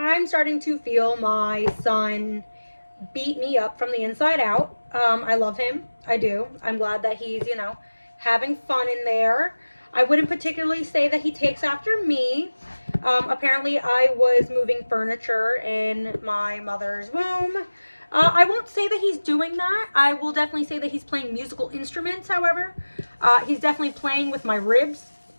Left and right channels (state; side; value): inverted; both; correlation -1.00